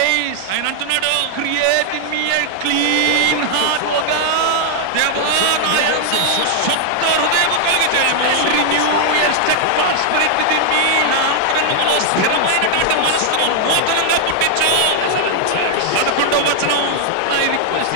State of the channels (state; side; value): different; both; correlation 0.00